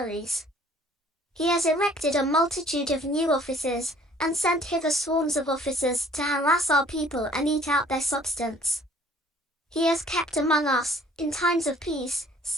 He has erected a multitude of new offices, and sent hither swarms of officers to harass our people and eat out their substance. He has kept among us, in times of peace,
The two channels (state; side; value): normal; both; correlation 0.56